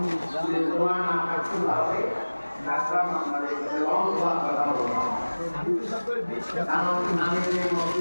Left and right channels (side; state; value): both; inverted; correlation -1.00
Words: যদি জমা না থাকতে তাহলে ডাক্তার আমাদের লম্বা কথা বলবো। কারণ আমি যে